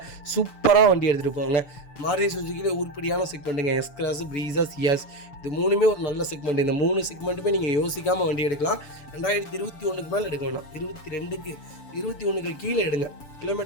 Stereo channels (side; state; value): right; late; 6.9 ms